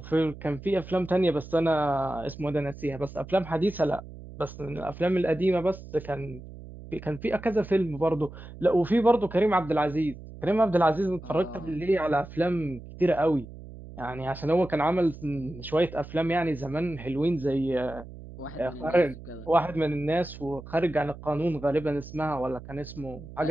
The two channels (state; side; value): noise; right; hum, 15 dB below the sound